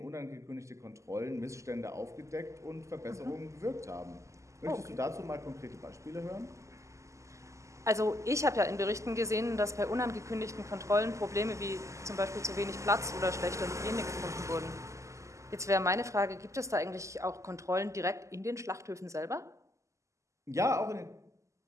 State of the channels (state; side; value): late; left; 0.15 ms